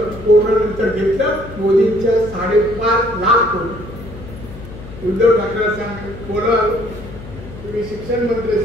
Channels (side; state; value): left; noise; hum, 14 dB below the sound